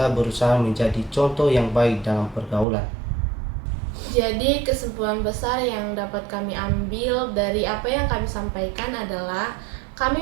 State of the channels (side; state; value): left; drops out; at 2.7 s